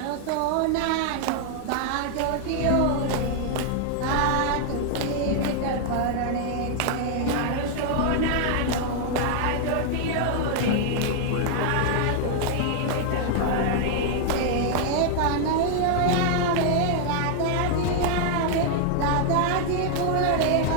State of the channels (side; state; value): both; different; correlation 0.00